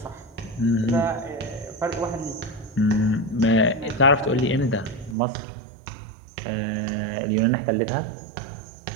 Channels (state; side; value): drops out; left; at 5.2 s